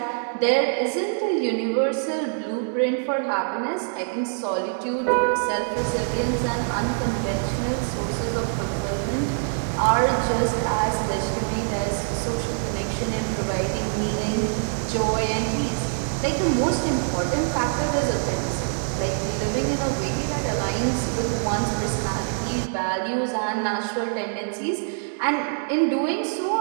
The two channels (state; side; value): silent; left; digital silence